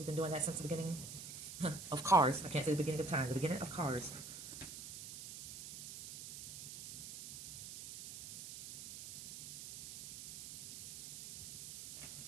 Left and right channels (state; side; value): noise; right; hiss, 10 dB below the sound